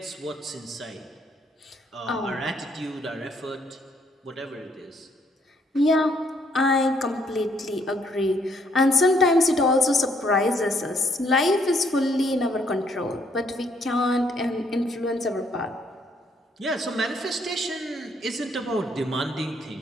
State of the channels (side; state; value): both; normal; correlation 0.69